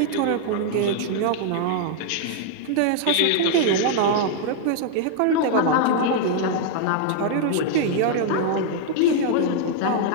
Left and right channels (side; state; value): both; different; correlation -0.01